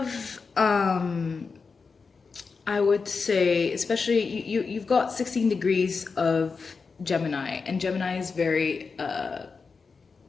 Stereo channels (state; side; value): quieter; right; 4.9 dB